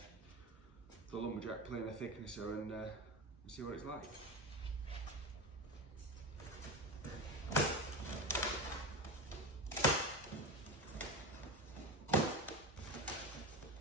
Lumberjack planer thicknesser and see what it's like.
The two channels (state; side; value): normal; both; correlation 0.22